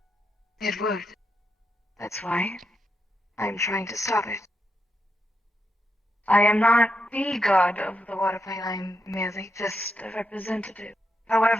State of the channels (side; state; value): both; normal; correlation 0.84